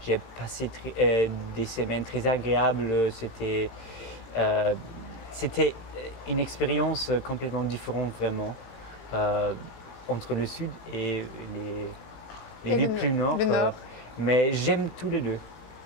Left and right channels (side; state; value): right; late; 18 ms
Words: j'ai passé des semaines très agréables. C'était une expérience complètement différente vraiment entre le sud et les villes plus nord. Mais j'aime tous les deux.